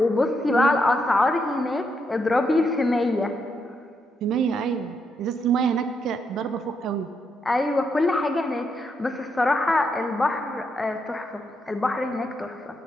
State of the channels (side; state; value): both; normal; correlation 0.79